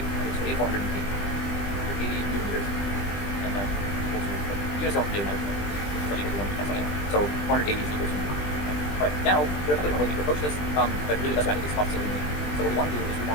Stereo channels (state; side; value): late; right; 20 ms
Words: and it's 480. 80 newton meters, and then equal to, units don't really matter, so equal to 1 cancel anyway. So 480 is equal to, alright, now there are a couple different ways we can approach this, but really the best way I think is cost saving. So what we want to do is we